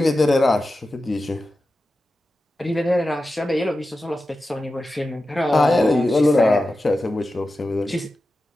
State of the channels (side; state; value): both; normal; correlation 0.93